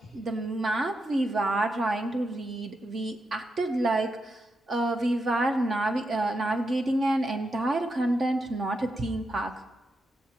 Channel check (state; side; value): normal; both; correlation 0.85